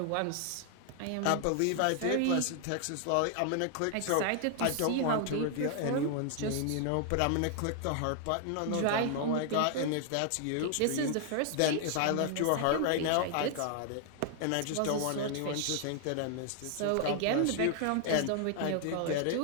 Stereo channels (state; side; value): different; both; correlation 0.00